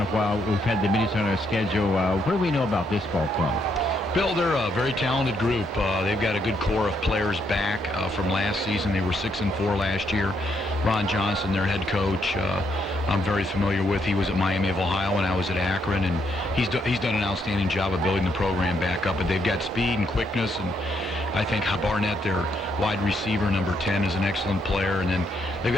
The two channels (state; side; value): normal; both; correlation 0.75